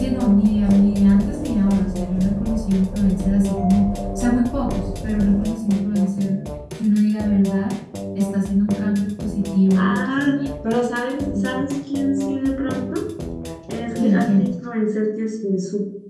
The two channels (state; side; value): identical; both; correlation 1.00